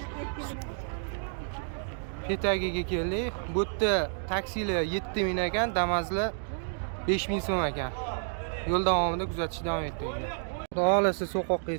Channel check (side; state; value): left; silent; digital silence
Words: Petagiga keldik. Bu yerda taksilar 7000 ekan, Damazlar 5000 so'm ekan. Yo'l davomida kuzatishda davom etinglar. Xudo xolasa so'qoqqa